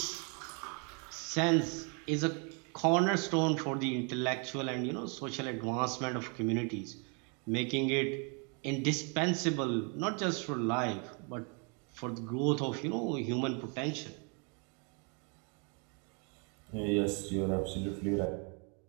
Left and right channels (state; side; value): quieter; left; 36.0 dB